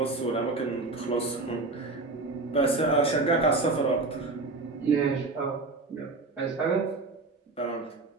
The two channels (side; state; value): left; quieter; 3.5 dB